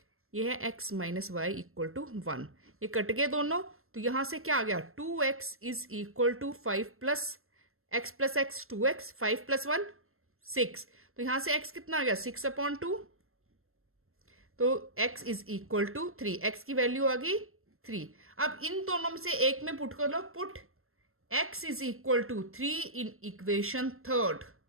ये है x minus y equal to 1, ये कट गए दोनों, तो यहां से क्या आ गया 2x is equal to 5 plus x plus x 2x, 5 plus 1 6, तो यहां से x कितना आ गया 6/2, तो x is equal to 3, x की वैल्यू आ गई 3। अब इन दोनों में से एक में पुट कर लो, put x is equal to 3 in equation third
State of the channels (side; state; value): left; late; 0.62 ms